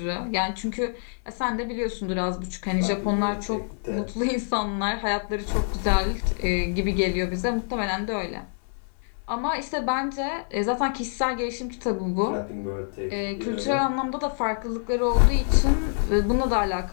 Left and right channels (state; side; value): silent; right; 61 dB below the other